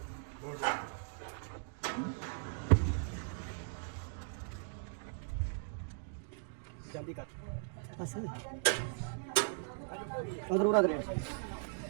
जल्दी कर उधर उड़ा दे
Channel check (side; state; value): left; silent; digital silence